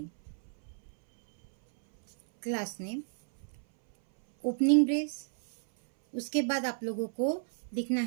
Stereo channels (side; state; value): left; silent; 57 dB below the other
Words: ओपनिंग ब्रेस। उसके बाद आप लोगों को लिखना